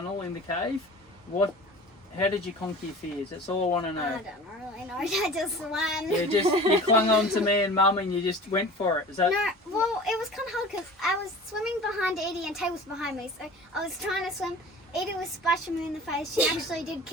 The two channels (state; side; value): normal; both; correlation 0.40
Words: in the cave. How did you conquer your fears? That's all I want to know. I don't really know. I just swam. You clung on to me and Mum, and you just went for it. Is that? No, well, it was kind of hard because I was swimming behind Edie and Tay was behind me, so I was trying to swim Edie was splashing me in the face. She actually did